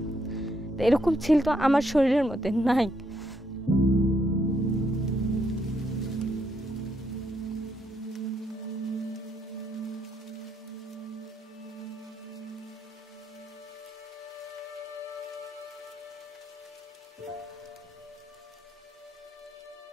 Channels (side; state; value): both; normal; correlation 0.75